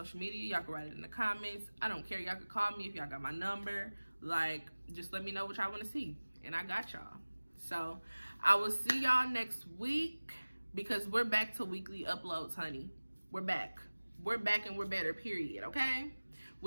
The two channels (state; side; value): inverted; both; correlation -1.00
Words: media. Y'all can write it in the comments. I don't care. Y'all can call me if y'all got my number. Like, just let me know what y'all want to see. And I got y'all. So I will see y'all next week. because we're back to weekly uploads, honey. We're back. We're back and we're better, period, okay?